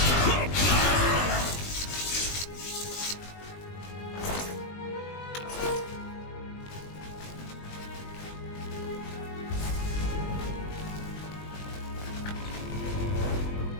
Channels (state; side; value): late; right; 20 ms